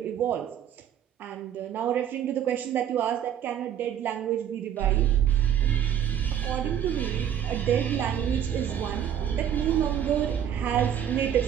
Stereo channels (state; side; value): quieter; left; 9.7 dB